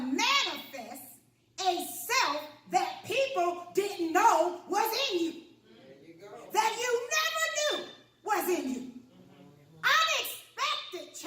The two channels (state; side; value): identical; both; correlation 1.00